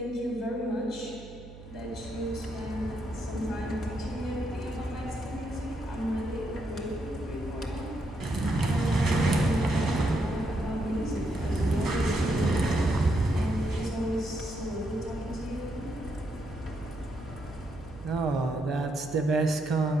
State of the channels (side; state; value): right; noise; hum, 16 dB below the sound